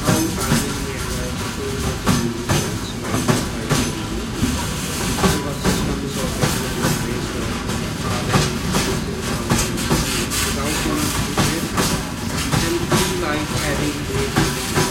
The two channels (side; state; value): both; identical; correlation 1.00